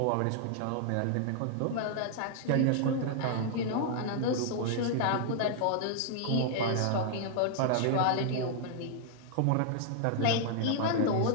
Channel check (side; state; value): both; different; correlation 0.00